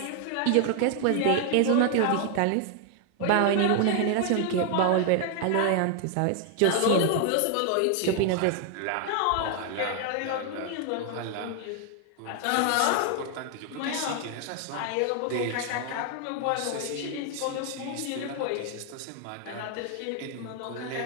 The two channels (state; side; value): different; both; correlation 0.00